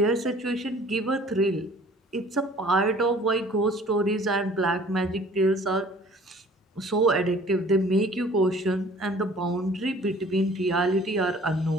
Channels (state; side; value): normal; both; correlation 0.51